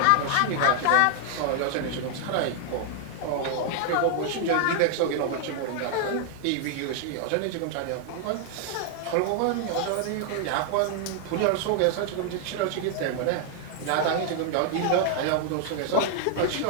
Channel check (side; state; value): both; different; correlation 0.00